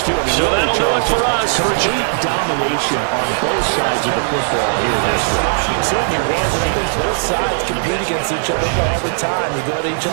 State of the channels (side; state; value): left; silent; 65 dB below the other